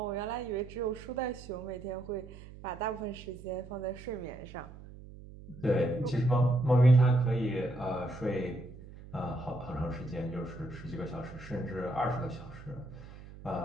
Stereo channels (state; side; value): noise; right; hum, 16 dB below the sound